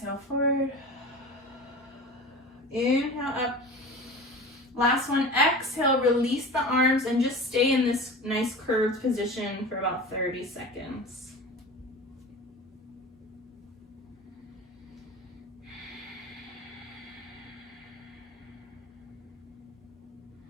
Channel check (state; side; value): normal; both; correlation 0.34